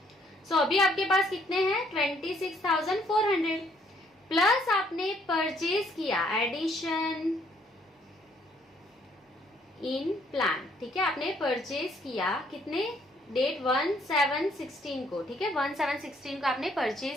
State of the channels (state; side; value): normal; both; correlation 0.66